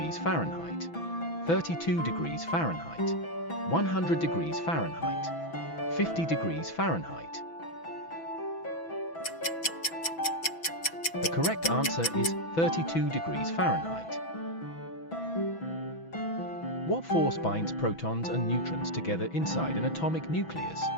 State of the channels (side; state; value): right; late; 6.1 ms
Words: Fahrenheit, 32 degrees Fahrenheit, 100 degrees Fahrenheit, 50 degrees Fahrenheit. The correct answer is 32 degrees Fahrenheit. What force binds protons and neutrons together inside an atomic nucleus?